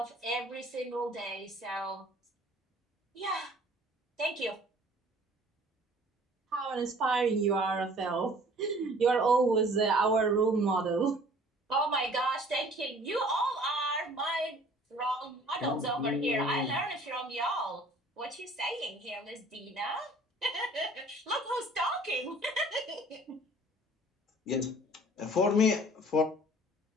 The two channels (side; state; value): both; normal; correlation 0.52